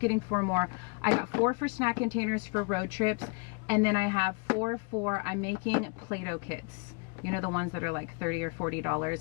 4 more. I got 4 for snack containers for road trips, and then I have 4 for, I'm making Play-Doh kits. You know, the ones that are like $30 or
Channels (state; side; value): quieter; right; 33.8 dB